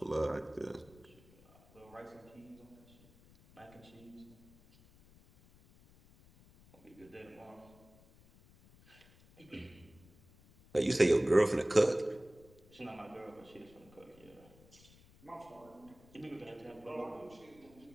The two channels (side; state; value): left; noise; rumble, 25 dB below the sound